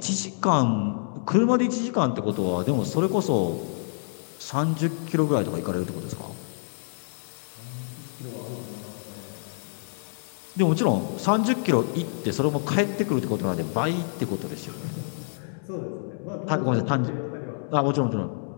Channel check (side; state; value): right; silent; digital silence